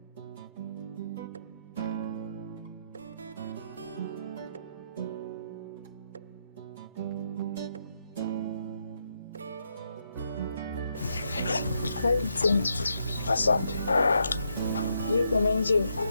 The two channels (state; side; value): inverted; both; correlation -0.79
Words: Asante. Yuko umeenjoy?